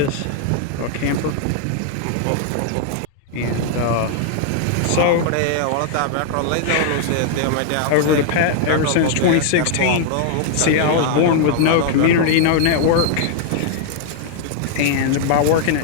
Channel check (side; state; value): both; different; correlation 0.00